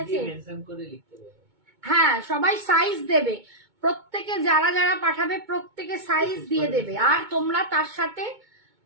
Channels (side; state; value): left; late; 2.2 ms